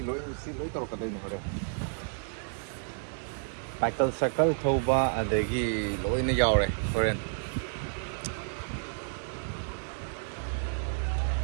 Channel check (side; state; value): left; silent; digital silence